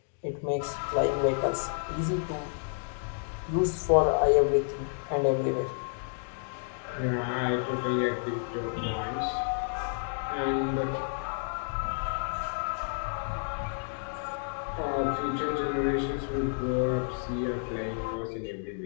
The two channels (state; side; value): silent; right; 58 dB below the other